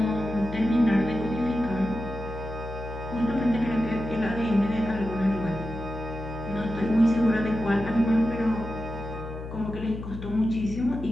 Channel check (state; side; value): noise; left; hum, 9 dB below the sound